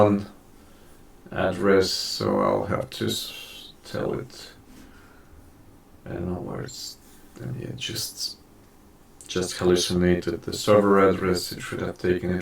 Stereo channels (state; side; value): identical; both; correlation 1.00